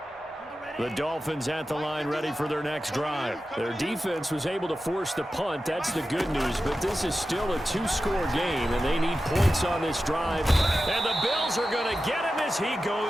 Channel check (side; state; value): both; normal; correlation 0.93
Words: The Dolphins at the line ready for their next drive. Their defense was able to force the punt. That's the good news, but this is still a two-score game, and they need points on this drive. And the Bills are going to get him as he